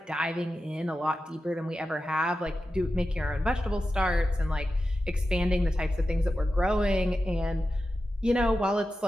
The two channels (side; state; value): both; normal; correlation 0.92